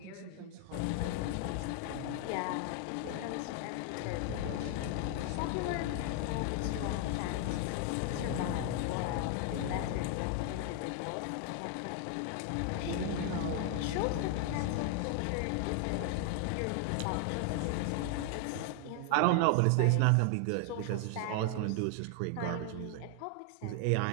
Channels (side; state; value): both; different; correlation 0.00